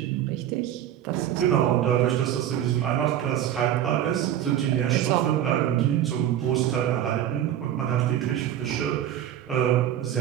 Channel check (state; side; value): quieter; left; 11.1 dB